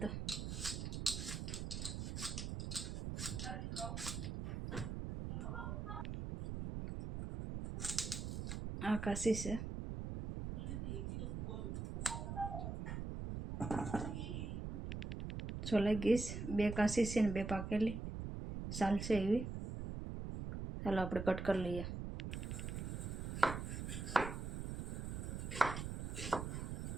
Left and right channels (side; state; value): right; noise; rumble, 4 dB below the sound